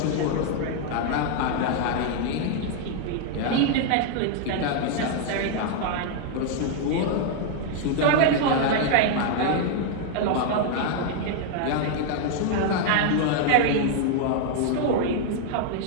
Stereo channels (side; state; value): both; different; correlation 0.00